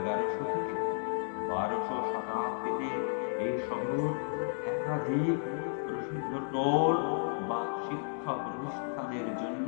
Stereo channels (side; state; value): right; silent; digital silence